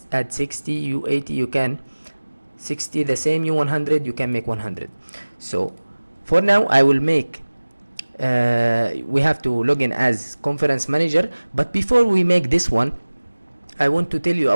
add 60, U80 you can 60, the same U100 you can make 100. So for now I will make we have to log in as conference manager. But before we make this one, I want to tell you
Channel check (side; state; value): both; inverted; correlation -1.00